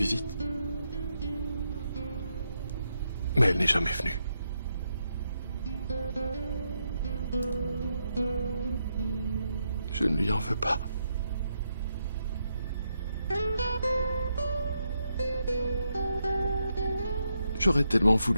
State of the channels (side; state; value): both; inverted; correlation -0.81